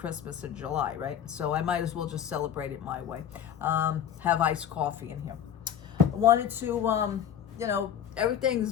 in July, right? So I might as well just celebrate it my way. Have iced coffee in here. I wanted to,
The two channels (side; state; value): right; quieter; 9.4 dB